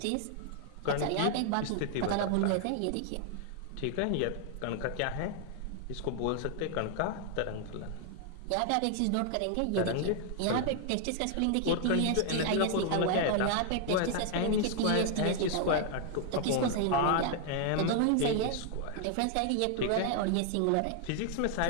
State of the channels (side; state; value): both; different; correlation 0.00